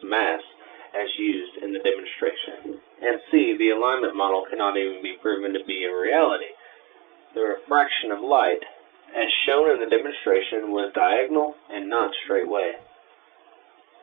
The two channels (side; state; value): left; quieter; 25.9 dB